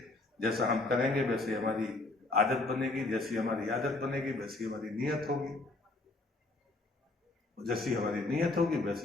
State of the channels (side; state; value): right; quieter; 3.1 dB